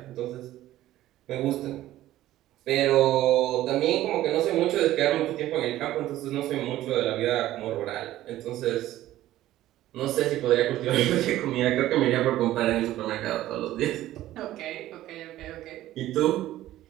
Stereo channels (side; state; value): left; quieter; 14.5 dB